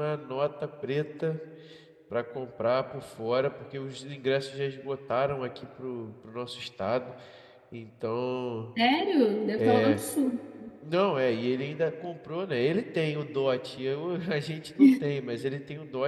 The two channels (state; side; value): identical; both; correlation 1.00